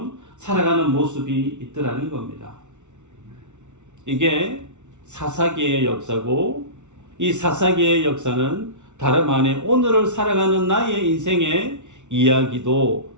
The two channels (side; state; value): left; late; 0.84 ms